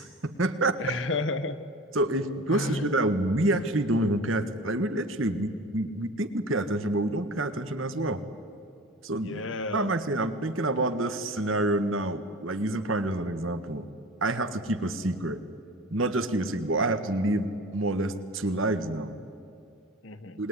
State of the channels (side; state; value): both; normal; correlation 0.37